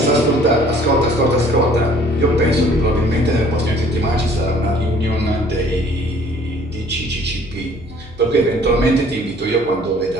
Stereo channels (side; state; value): left; noise; hum, 20 dB below the sound